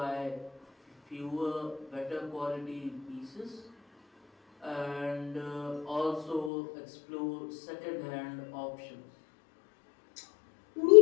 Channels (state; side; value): drops out; right; at 6.5 s